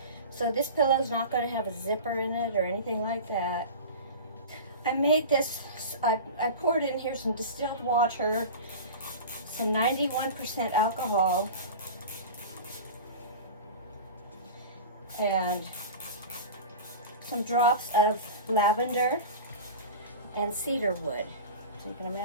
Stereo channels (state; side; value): inverted; both; correlation -0.32